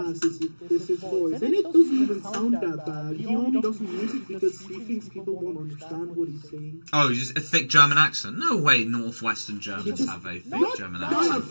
is his voice. And it doesn't even sound that bad. He only doesn't use it because he thinks people won't understand what he's saying. Oh, just a thick German accent? No way Northwestern Germans have a thick German accent.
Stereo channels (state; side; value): inverted; both; correlation -1.00